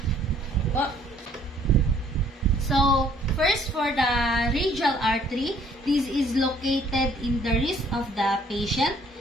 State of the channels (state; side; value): normal; both; correlation 0.61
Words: So, first for the radial artery, this is located in the wrist of the patient.